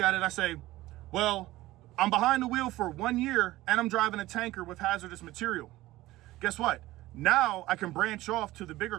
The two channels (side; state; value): left; quieter; 17.2 dB